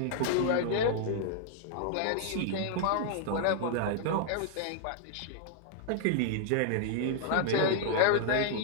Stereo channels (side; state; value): both; different; correlation -0.01